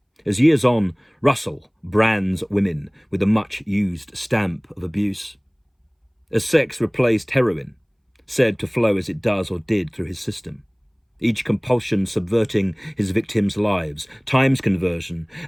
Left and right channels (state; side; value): identical; both; correlation 1.00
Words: As years on, Russell brands women with a much-used stamp of abuse. As sex replaced heroin, said to flow as it does or did through his system. Each compulsion subverting his victims' lives, times conversion,